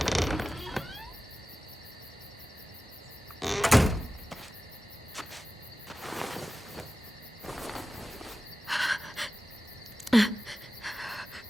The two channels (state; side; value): normal; both; correlation 0.95